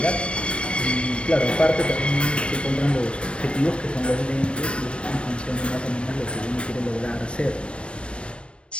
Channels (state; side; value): late; right; 0.059 ms